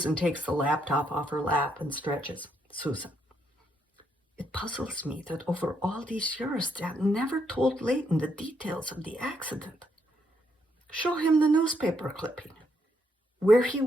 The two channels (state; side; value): normal; both; correlation 0.76